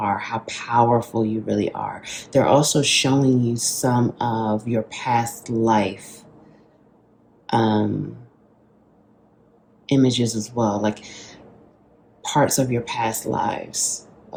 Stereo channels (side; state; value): both; identical; correlation 1.00